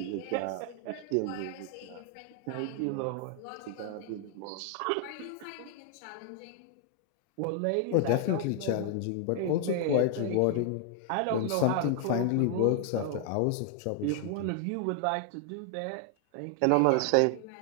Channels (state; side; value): different; both; correlation 0.00